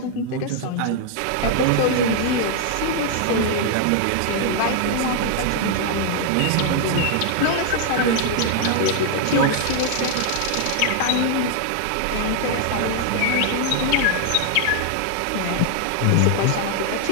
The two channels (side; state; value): both; different; correlation 0.00